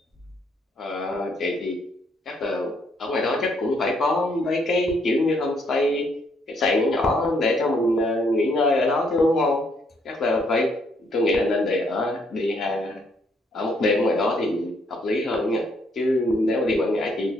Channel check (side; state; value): both; normal; correlation 0.70